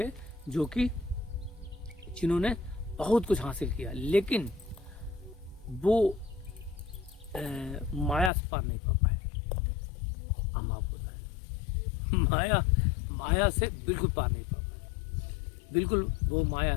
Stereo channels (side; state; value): right; drops out; at 8.3 s